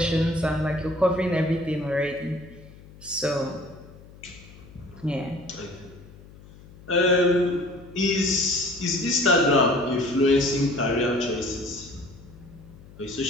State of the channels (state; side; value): noise; left; hum, 21 dB below the sound